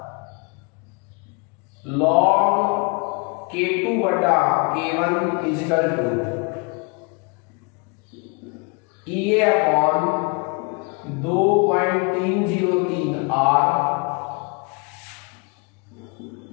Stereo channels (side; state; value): right; quieter; 32.8 dB